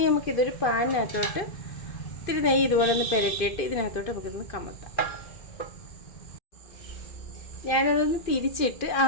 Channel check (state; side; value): late; right; 2.5 ms